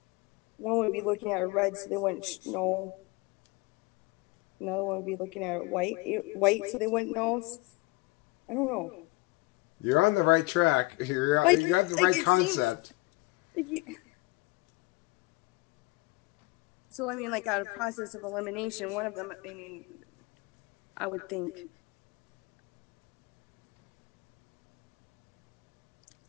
One would be looking at a red, so they wouldn't know. another one would be looking at white, so they wouldn't know. I don't know. You're on the right track. You got the right concept. So, I mean, like, out of process of elimination, one of them, I mean, I would think,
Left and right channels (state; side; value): quieter; right; 22.7 dB